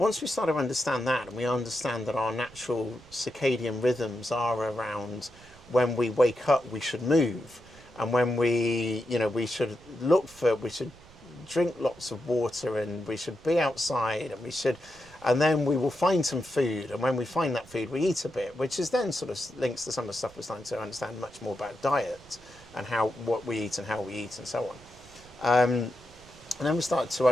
we start to understand that, and we understand that our natural circadian rhythms are around when we wake up, we should move, and when we should drink lots of water, and we should be outside, and then we will find some food, and when we find that food, we eat a bit, which is then sort of links to some of the stuff we're starting to understand much more about diet and what we eat and how we eat and so on. And then we start to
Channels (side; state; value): right; noise; rumble, 23 dB below the sound